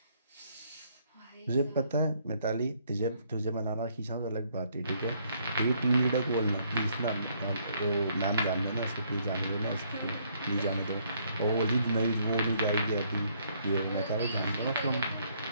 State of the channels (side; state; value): both; inverted; correlation -0.68